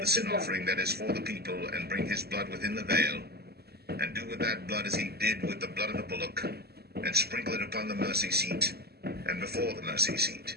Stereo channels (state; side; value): late; left; 0.46 ms